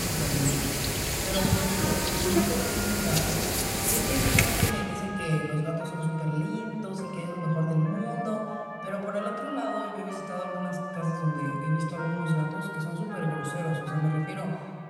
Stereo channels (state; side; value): identical; both; correlation 1.00